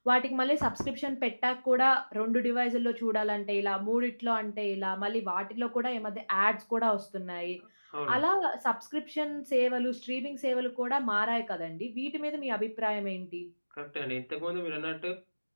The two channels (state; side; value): inverted; both; correlation -1.00